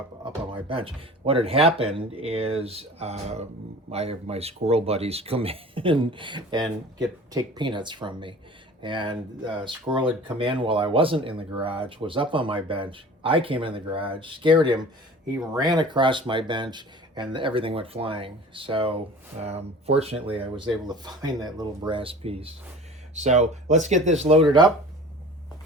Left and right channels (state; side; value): normal; both; correlation 0.42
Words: on my bench. What had happened is I have my squirrel buddies come in and take peanuts from me. And squirrel had come in while I wasn't in the garage, was up on my bench. I came in the garage, scared him. He ran across my bench, and everything went flying. So fortunately, I was able to find that little brass piece. So let's get this loaded up.